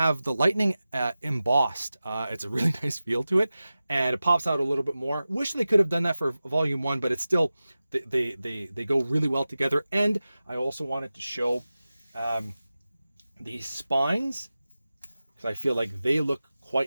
the lightning embossed. It's a really nice feel to it, and it pops out a little bit more. Wish they could have done that for Volume 1, but it's still, they go really well together. And I also wanted to show these spines, because I feel like they look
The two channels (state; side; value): inverted; both; correlation -0.95